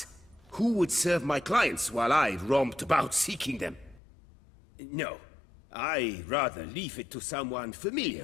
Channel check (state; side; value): drops out; right; at 4.0 s